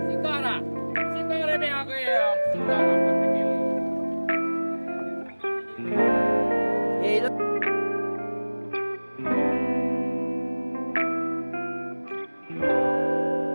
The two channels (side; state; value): both; inverted; correlation -1.00